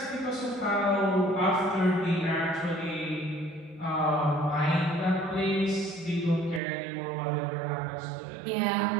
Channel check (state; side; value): drops out; left; at 6.6 s